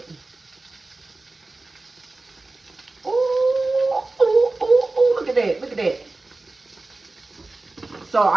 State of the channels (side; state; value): left; quieter; 3.3 dB